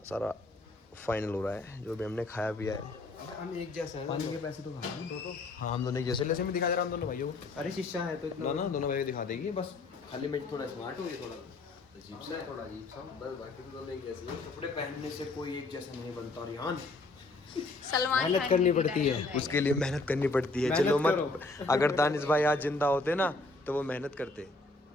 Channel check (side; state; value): right; quieter; 3.3 dB